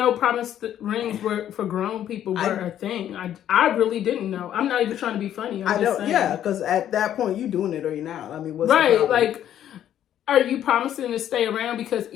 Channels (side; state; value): right; quieter; 10.9 dB